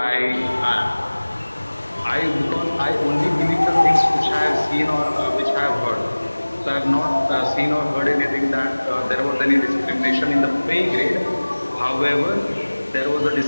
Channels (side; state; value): both; inverted; correlation -1.00